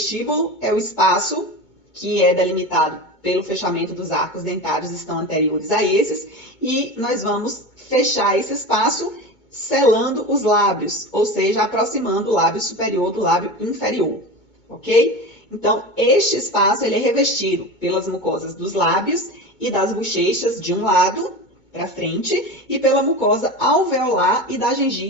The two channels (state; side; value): late; right; 2.2 ms